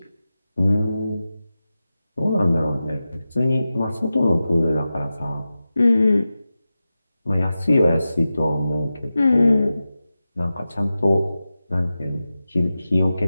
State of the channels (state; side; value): inverted; both; correlation -0.94